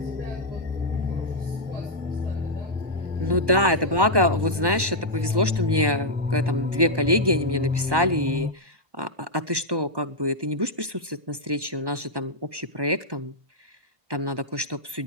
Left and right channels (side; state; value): left; late; 1.1 ms